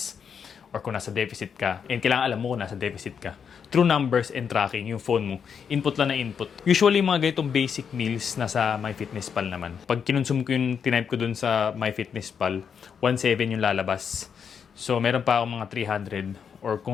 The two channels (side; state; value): right; quieter; 7.0 dB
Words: Or kung nasa deficit ka, and kailangan alam mo kung nasa deficit ka. Through numbers and tracking, yung phone mo, input lang na input. Usually, mga ganitong basic meals nasa MyFitnessPal naman. Pag kinonsume ko yung tinype ko dun sa MyFitnessPal, 1.7 yung lalabas. So, meron pa akong mga 300. Or